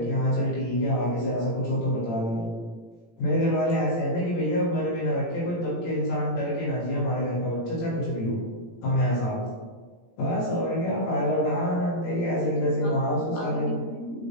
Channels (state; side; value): late; right; 17 ms